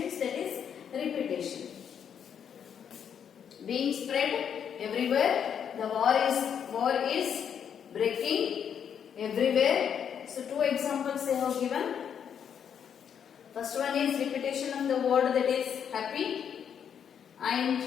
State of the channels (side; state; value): right; quieter; 8.1 dB